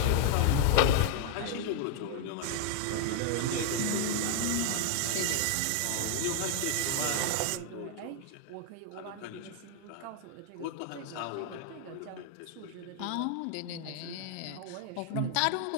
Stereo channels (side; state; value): both; different; correlation 0.00